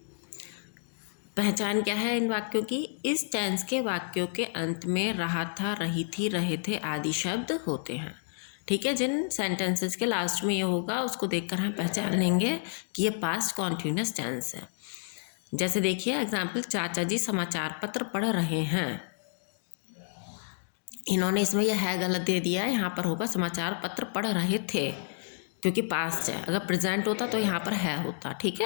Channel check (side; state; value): right; silent; digital silence